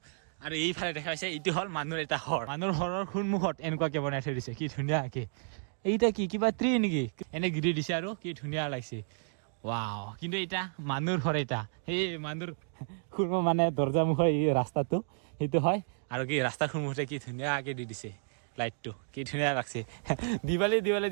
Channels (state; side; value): silent; left; digital silence